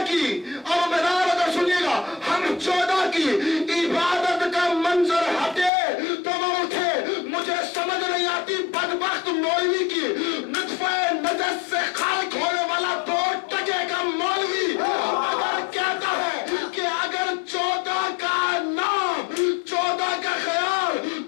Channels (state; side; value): drops out; right; at 5.7 s